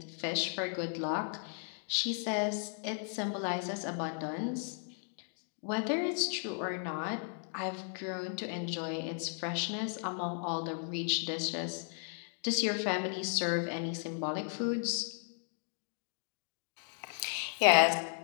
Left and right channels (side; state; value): right; silent; 54 dB below the other